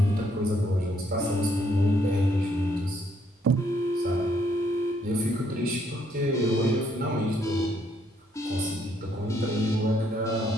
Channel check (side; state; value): both; normal; correlation 0.70